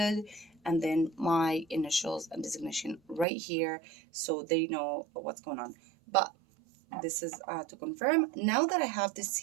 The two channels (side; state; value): left; drops out; at 3.2 s